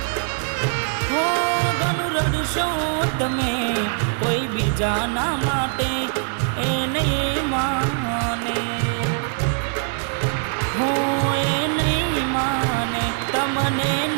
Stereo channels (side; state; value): left; silent; 64 dB below the other